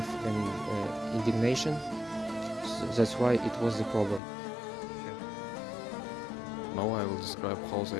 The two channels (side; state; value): right; drops out; at 4.2 s